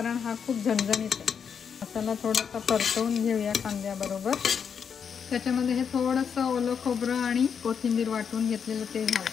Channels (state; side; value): quieter; right; 7.0 dB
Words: हा खूप झणझणीत आहे। मसाला थोडासा परतवून घेऊया कांद्याबरोबर। त्याच्यामध्ये हे थोडंसं ओलं खोबरं आणि कोथिंबीर वाटून घेतलेलं ते